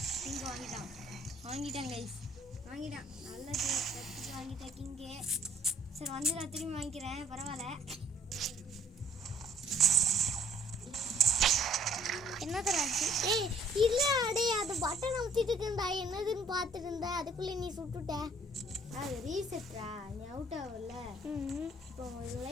வாங்கிட்டான் கைஸ். நல்லது. வாங்கிட்டேன் கிங்கே. சரி வந்து நான் திரும்பி வாங்கிக்கிறேன். பரவாயில்ல. என்ன தராச்சு? ஏய் இல்ல அடே, அது பட்டன் அமுத்திட்டு இருந்தா என்னதுன்னு பார்த்துட்டு இருந்தா, அதுக்குள்ளே நீ சுட்டுட்ட. அது ரீசெட்ரா, நீ அவுட் ஆகல. இப்போ உங்களுக்கு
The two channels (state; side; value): normal; both; correlation 0.59